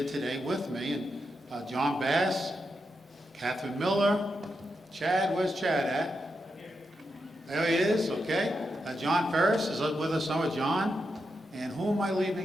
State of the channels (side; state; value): both; normal; correlation 0.86